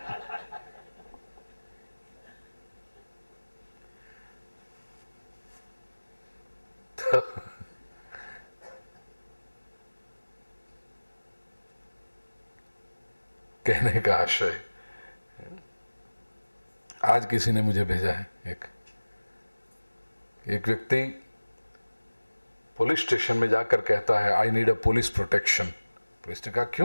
कहने का आशय, आज किसी ने मुझे भेजा है, एक व्यक्ति पुलिस स्टेशन में जाकर कहता है, I need a police protection. Police ने कहा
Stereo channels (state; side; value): inverted; both; correlation -1.00